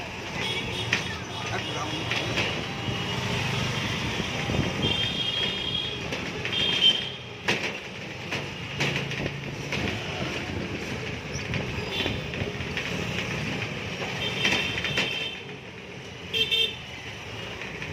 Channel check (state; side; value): identical; both; correlation 1.00